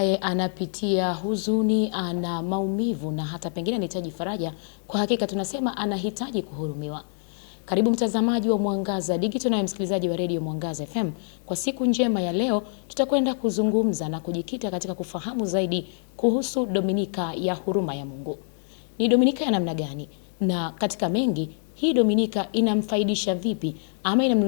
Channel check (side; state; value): right; silent; digital silence